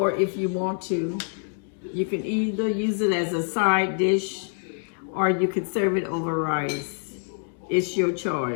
if you want to. You can either use it as a side dish or you could serve it over rice. It's your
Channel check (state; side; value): silent; right; 61 dB below the other